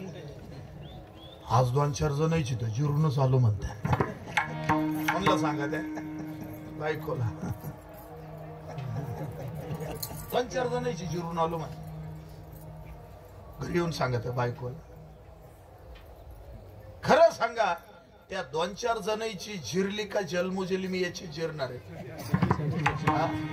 आज 2-4 जण यायची तर जिरून चालू म्हणते. म्हणलं सांगा त्या बायकोला 2-4 जण यायची जिरून आलो म्हण. घरी येऊन सांगा त्या बायकोला. खरं सांगा त्या 2-4 जणांची जिरली का जन्मोजली मी याची जिरणार आहे?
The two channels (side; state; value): both; identical; correlation 1.00